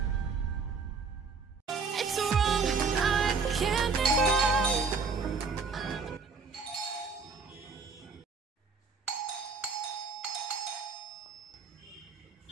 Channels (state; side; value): quieter; left; 4.9 dB